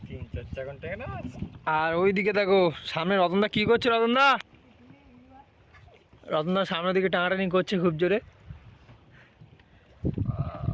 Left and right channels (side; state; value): both; identical; correlation 1.00